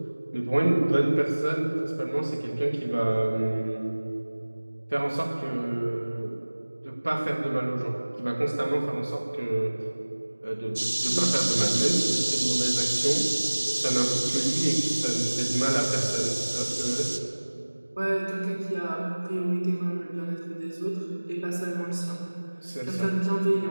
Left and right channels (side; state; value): both; inverted; correlation -1.00